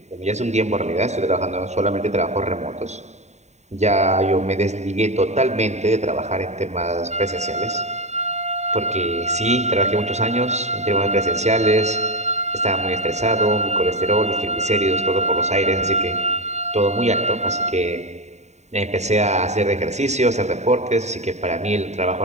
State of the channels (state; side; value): late; left; 0.33 ms